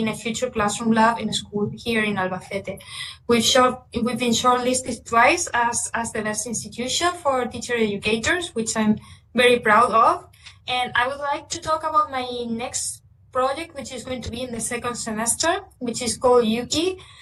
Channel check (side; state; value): both; identical; correlation 1.00